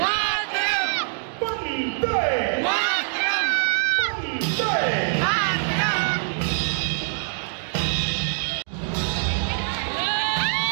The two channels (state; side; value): silent; left; 61 dB below the other